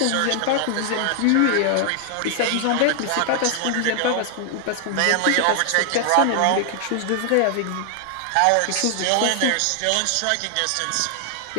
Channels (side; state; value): both; different; correlation 0.00